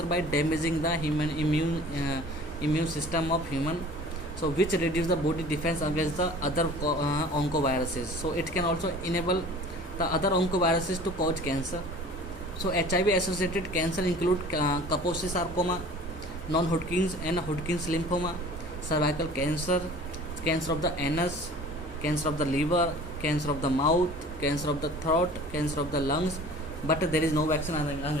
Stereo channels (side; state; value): both; normal; correlation 0.45